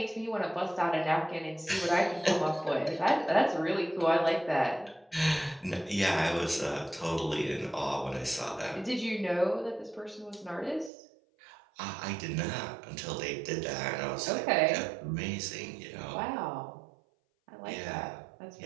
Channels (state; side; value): drops out; left; at 10.9 s